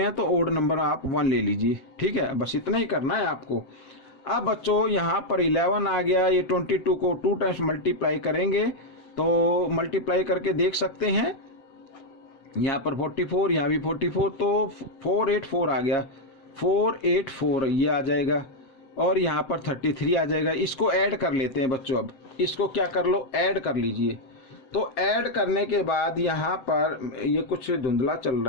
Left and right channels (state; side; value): late; right; 7.8 ms